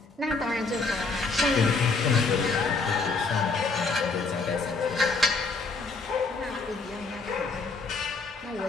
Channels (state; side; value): quieter; right; 4.1 dB